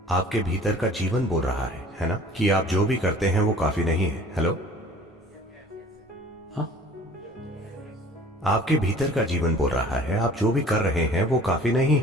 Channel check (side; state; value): both; normal; correlation 0.48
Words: आपके भीतर का जीवन बोल रहा है ना, कि आप जो भी करते हैं वो काफी नहीं है। हेलो, हाँ? आपके भीतर का जीवन बोल रहा है आप जो भी कर रहे हैं वो काफी नहीं